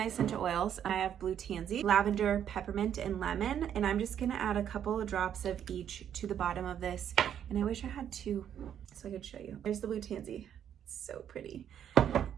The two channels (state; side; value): quieter; left; 9.5 dB